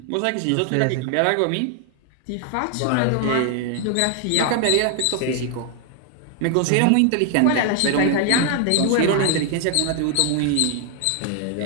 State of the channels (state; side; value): different; both; correlation 0.00